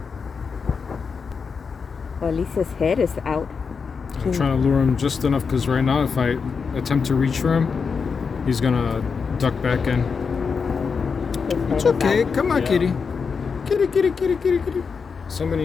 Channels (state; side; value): quieter; right; 5.5 dB